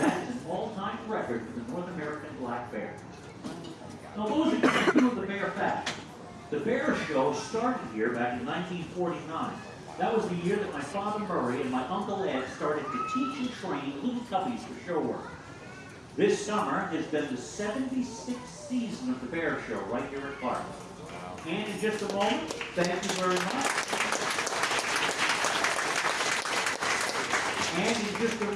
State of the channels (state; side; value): identical; both; correlation 1.00